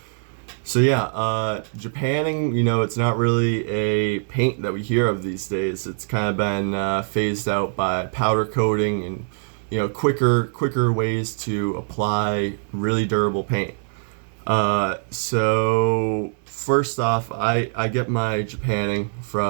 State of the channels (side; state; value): left; silent; digital silence